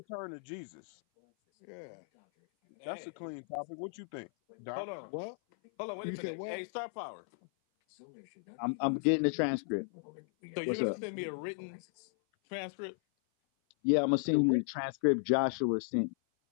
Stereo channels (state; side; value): silent; right; 54 dB below the other